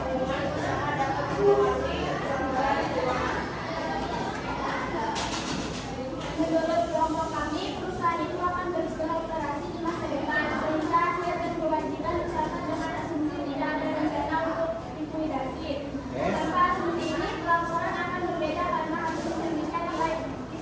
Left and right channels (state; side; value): identical; both; correlation 1.00